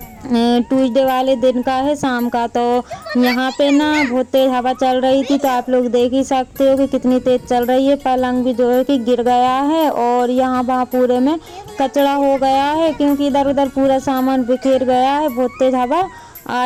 ट्यूसडे वाले दिन का है, शाम का। तो यहाँ पे ना बहुत तेज हवा चल रही थी, तो आप लोग देख ही सकते हो कि कितनी तेज चल रही है। पलंग भी जो है कि गिर गया है और यहाँ वहाँ पूरे में कचरा हो गया है, क्योंकि इधर उधर पूरा सामान बिखेर गया है। बहुत तेज हवा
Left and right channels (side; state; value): both; identical; correlation 1.00